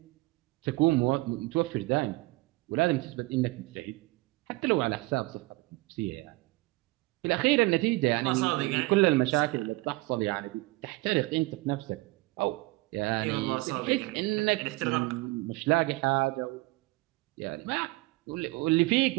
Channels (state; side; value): quieter; left; 22.2 dB